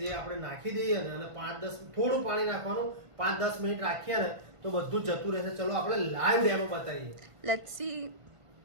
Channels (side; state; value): left; late; 1.5 ms